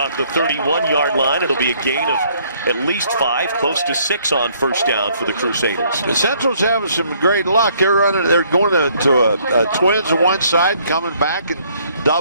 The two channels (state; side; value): inverted; both; correlation -0.64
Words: the 31-yard line. It'll be a gain of at least 5, close to 6 on first down for the Crusaders. The Central's having some great luck. They're going to a twins on one side, coming back and